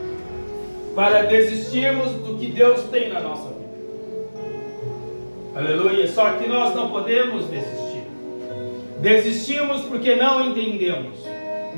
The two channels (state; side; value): inverted; both; correlation -1.00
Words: para desistirmos do que Deus tem na nossa vida. Aleluia. Só que nós não podemos desistir. Desistimos porque não entendemos,